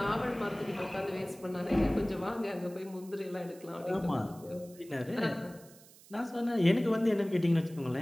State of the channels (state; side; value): noise; right; hiss, 23 dB below the sound